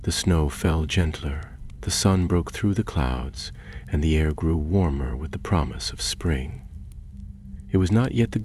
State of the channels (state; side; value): identical; both; correlation 1.00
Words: The snow fell gentler, the sun broke through the clouds, and the air grew warmer with the promise of spring. It was not yet the